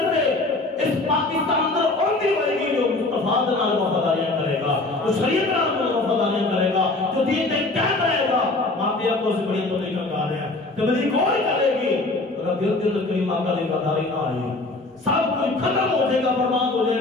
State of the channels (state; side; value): quieter; right; 3.0 dB